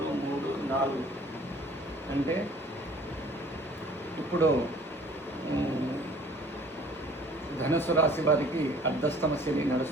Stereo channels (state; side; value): normal; both; correlation 0.52